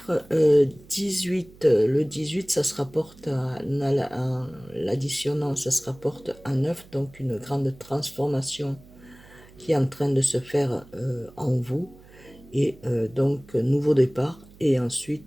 18. Le 18, ça se rapporte à l'additionnant, ça se rapporte à 9, donc une grande transformation qui est en train de se faire en vous. Et donc, nouveau départ. Et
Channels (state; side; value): noise; right; hum, 23 dB below the sound